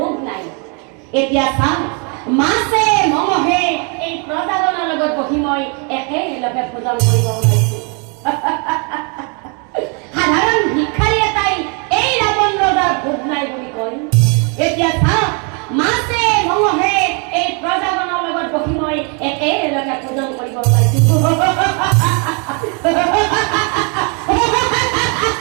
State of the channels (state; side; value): quieter; left; 35.7 dB